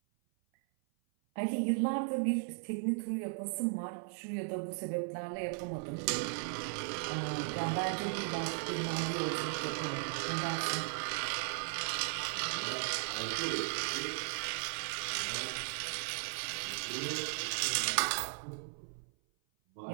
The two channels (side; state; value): left; silent; 53 dB below the other